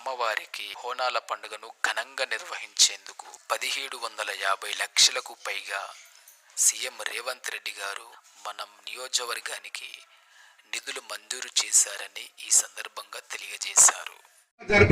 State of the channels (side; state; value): both; identical; correlation 1.00